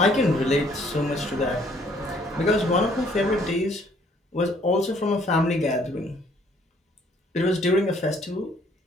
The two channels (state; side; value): normal; both; correlation 0.62